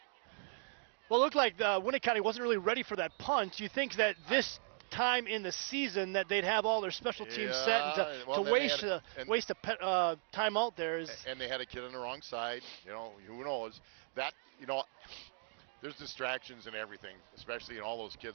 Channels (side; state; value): left; silent; 53 dB below the other